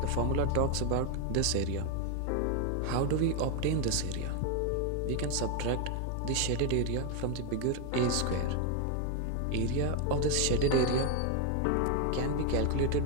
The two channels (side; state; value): both; different; correlation 0.01